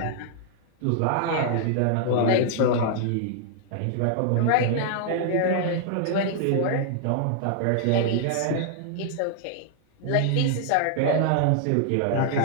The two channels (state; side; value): different; both; correlation -0.01